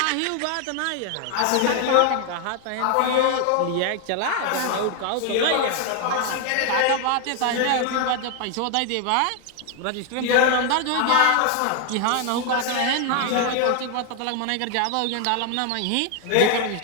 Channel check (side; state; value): both; different; correlation 0.00